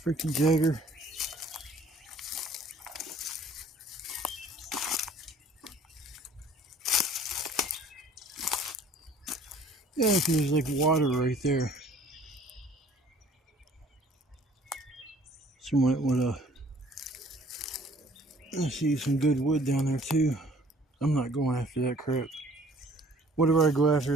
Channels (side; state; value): both; normal; correlation 0.55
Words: Freaking Jagger. Yeah, there's like water right there. So might want to see some good wood down there too. I'm not going after that crap. Whatever I go after